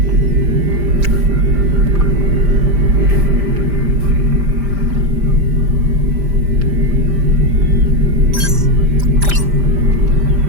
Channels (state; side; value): late; left; 5.0 ms